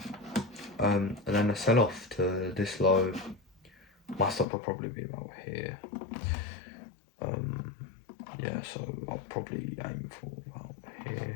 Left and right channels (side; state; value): right; drops out; at 4.5 s